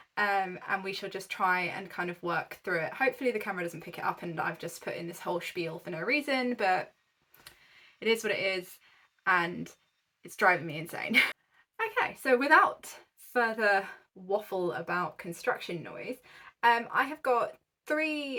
and we shall just try and kind of work through it. Hopefully the camera doesn't pick it up and I've just put in this whole spiel for no reason, but it is what it is and it's driving me insane. Okay, so without further waffle about construction noise, I have got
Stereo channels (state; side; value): identical; both; correlation 1.00